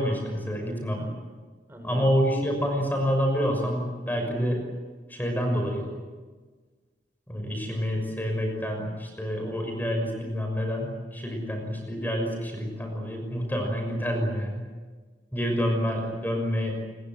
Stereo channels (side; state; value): both; normal; correlation 0.77